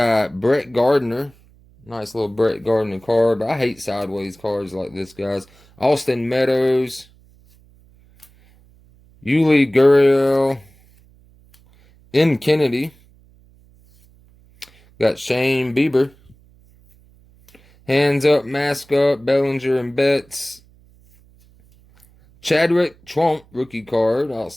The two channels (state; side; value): noise; right; hum, 29 dB below the sound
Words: Brett Gardner. Nice little Brett Gardner card. But I hate sideways cards like this, guys. Austin Meadows. Yuli Gurriel. M. Kennedy. Got Shane Bieber. Hands up, mask up, Bellinger and Betts. Chadwick Trump rookie card. I'll